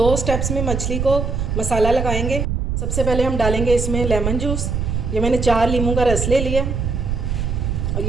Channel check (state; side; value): noise; right; rumble, 1 dB below the sound